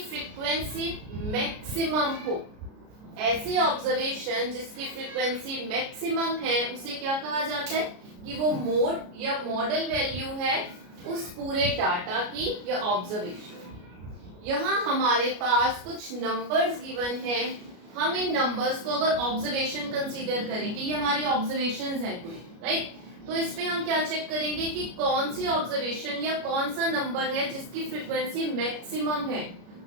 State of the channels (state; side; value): late; left; 33 ms